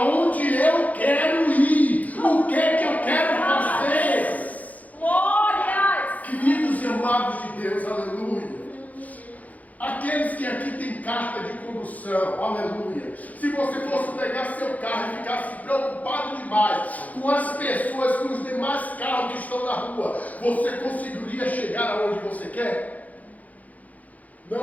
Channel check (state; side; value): late; right; 0.076 ms